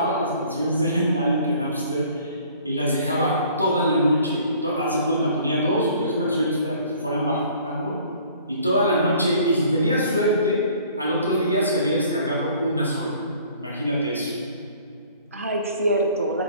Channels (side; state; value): both; inverted; correlation -0.54